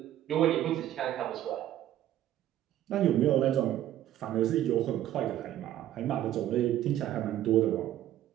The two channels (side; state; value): left; quieter; 12.4 dB